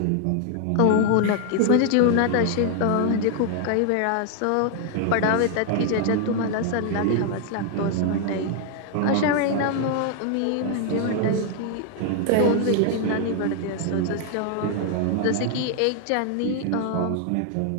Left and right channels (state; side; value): different; both; correlation 0.00